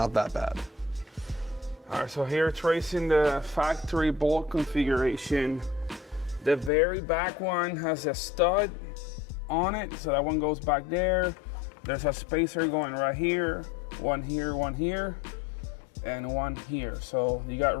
that bad. All right, so here tracing the factory bolt configuration. The very back one has a stud on it, so that one goes back there. There's a spacer going right here, one here, and one here. So you got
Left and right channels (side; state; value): right; drops out; at 6.7 s